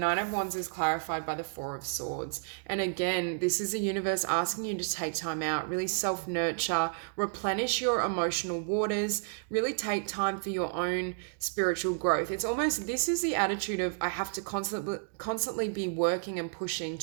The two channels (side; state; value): left; silent; digital silence